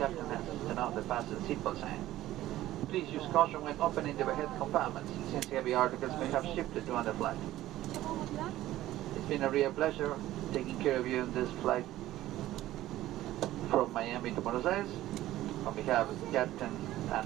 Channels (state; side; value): quieter; left; 14.9 dB